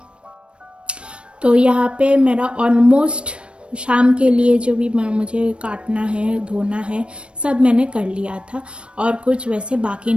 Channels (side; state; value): left; late; 0.058 ms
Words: तो यहाँ पे मेरा ऑलमोस्ट शाम के लिए जो भी मुझे काटना है, धोना है, सब मैंने कर लिया था और कुछ वैसे बाकी